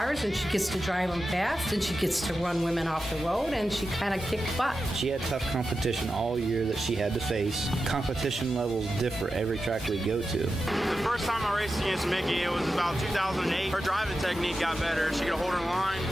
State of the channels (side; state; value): both; normal; correlation 0.91